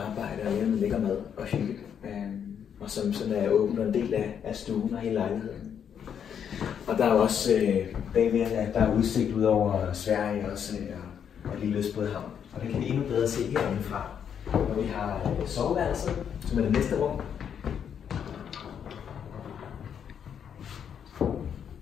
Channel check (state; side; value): quieter; right; 8.2 dB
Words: og lave noget lækker mad og hygge. Og som sådan er åbent og en del af stuen og hele lejligheden. Og der er også bagved, at der er udsigt ud over Sverige også, og lille Østbådehavn. Og det kan vi endnu bedre se herindefra. Og vi har soveværelset, som er det næste rum.